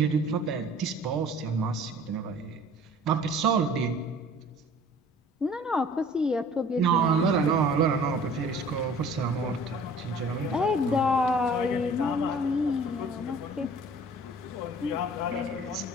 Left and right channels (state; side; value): normal; both; correlation 0.49